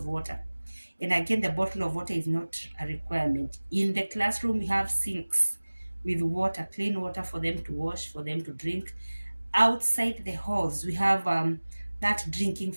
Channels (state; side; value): inverted; both; correlation -1.00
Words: water. And again, the bottle of water is not a requirement. In the classroom, we have sinks with water, clean water for them to wash, for them to drink. Outside the halls, we have that drinking